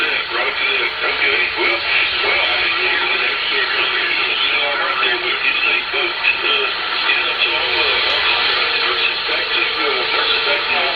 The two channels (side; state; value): left; noise; rumble, 26 dB below the sound